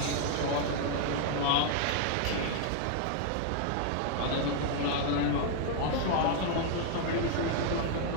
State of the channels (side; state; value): both; different; correlation 0.00